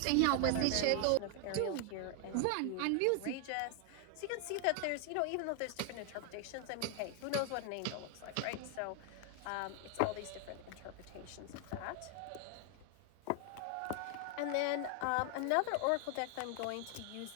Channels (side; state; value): both; different; correlation 0.01